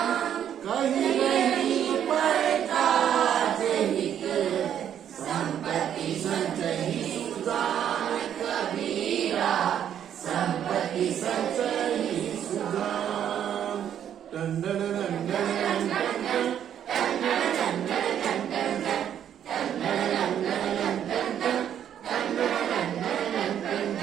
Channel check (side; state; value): left; quieter; 9.6 dB